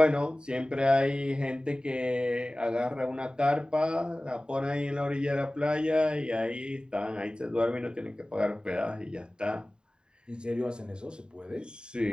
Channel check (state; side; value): late; left; 0.048 ms